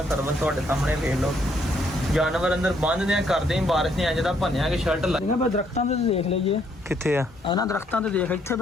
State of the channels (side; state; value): both; normal; correlation 0.70